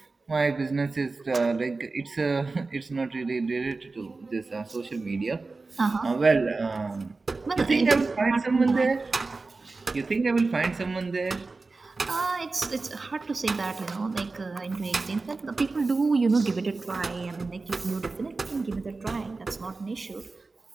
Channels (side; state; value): left; quieter; 3.8 dB